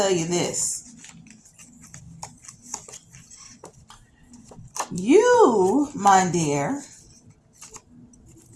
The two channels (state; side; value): identical; both; correlation 1.00